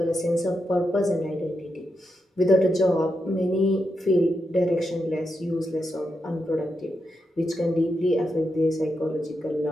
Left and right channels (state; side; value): normal; both; correlation 0.85